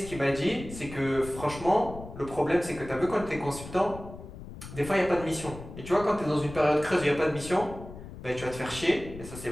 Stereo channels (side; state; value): left; noise; rumble, 13 dB below the sound